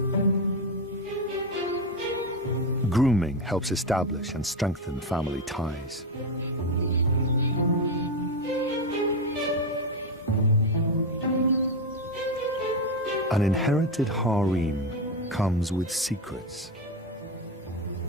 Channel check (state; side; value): normal; both; correlation 0.12